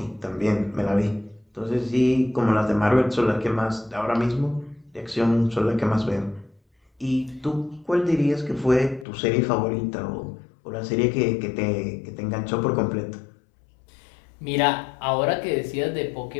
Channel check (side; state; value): right; drops out; at 9.1 s